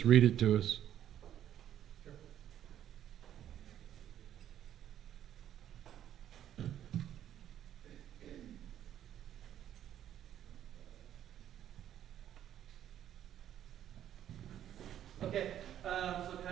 read it to us. Okay, so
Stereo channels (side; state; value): left; quieter; 10.8 dB